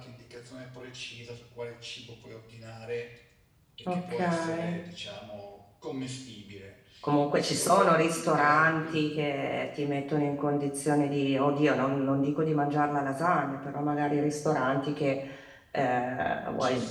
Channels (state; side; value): identical; both; correlation 1.00